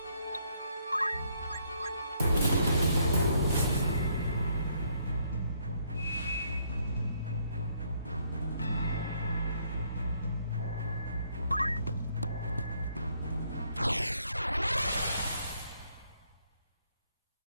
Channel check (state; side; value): inverted; both; correlation -0.70